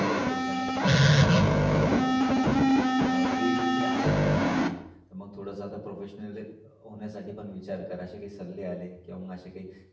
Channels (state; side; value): identical; both; correlation 1.00